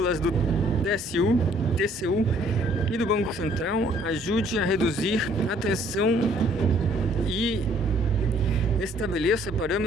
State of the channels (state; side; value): normal; both; correlation 0.61